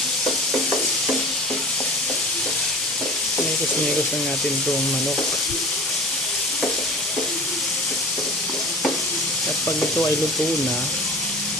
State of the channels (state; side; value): normal; both; correlation 0.39